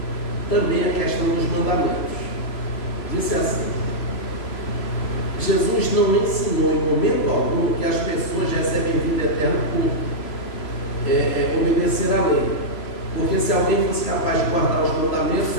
também a questão dos mandamentos. Disse assim: Jesus não ensinou em momento algum que as pessoas recebem vida eterna por obedecer à lei. Porque se alguém fosse capaz de guardar os mandamentos,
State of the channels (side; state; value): right; late; 3.0 ms